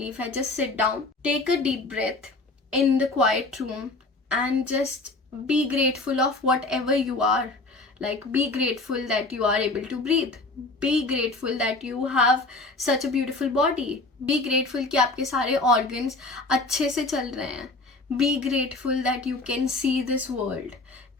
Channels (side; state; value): right; quieter; 3.2 dB